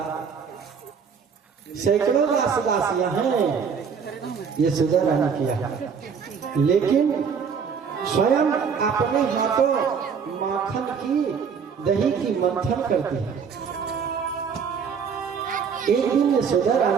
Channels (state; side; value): quieter; left; 6.4 dB